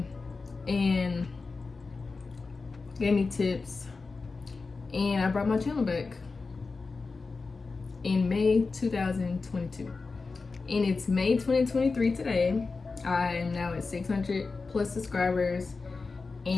and gave me tips, and I brought my channel back in May 2022, and it's May 2023 today. I am now at 600 plus subscribers,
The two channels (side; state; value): right; quieter; 4.2 dB